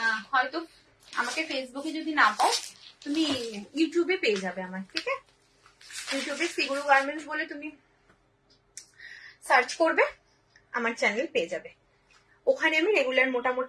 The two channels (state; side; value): identical; both; correlation 1.00